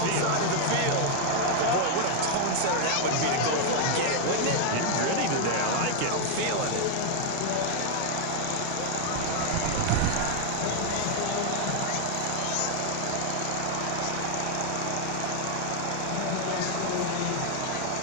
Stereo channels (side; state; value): both; different; correlation 0.00